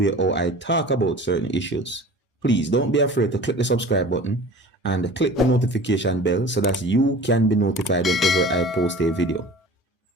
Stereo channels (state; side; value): normal; both; correlation 0.41